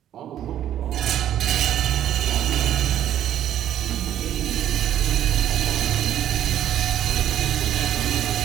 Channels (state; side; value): quieter; left; 11.2 dB